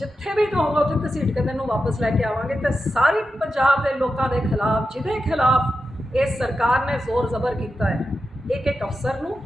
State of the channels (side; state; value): both; normal; correlation 0.90